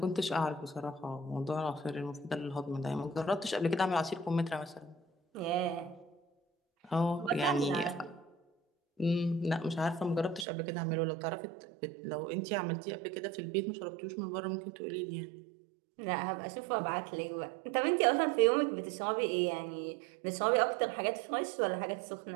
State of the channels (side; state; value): left; drops out; at 10.5 s